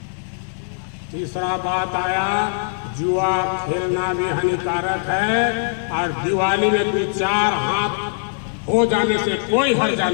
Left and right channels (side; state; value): right; silent; 65 dB below the other